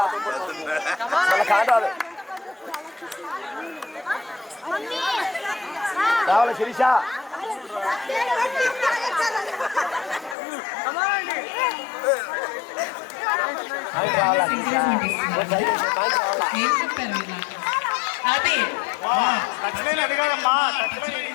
కాటాలు రావాలి శిరీష. ఏం చెప్పారు ఇలా? అది టచ్ లైన్ అది కాదమ్మా, టచ్ లైన్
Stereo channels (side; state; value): right; drops out; at 10.4 s